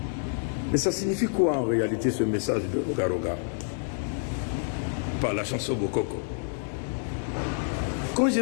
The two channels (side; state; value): right; silent; digital silence